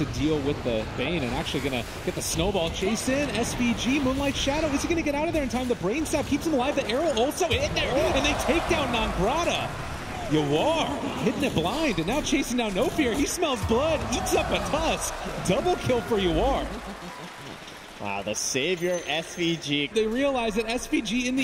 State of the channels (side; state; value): both; identical; correlation 1.00